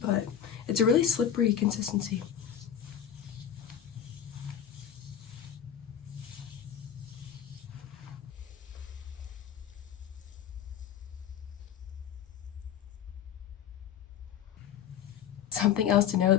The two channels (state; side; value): quieter; right; 9.3 dB